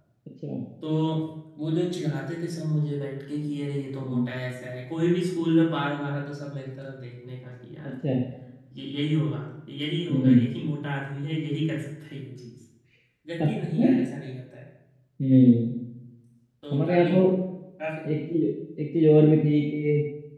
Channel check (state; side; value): identical; both; correlation 1.00